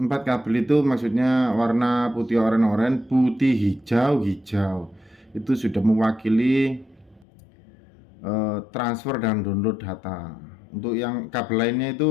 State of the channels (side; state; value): right; drops out; at 7.2 s